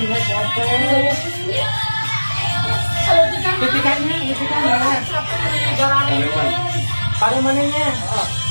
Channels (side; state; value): both; inverted; correlation -1.00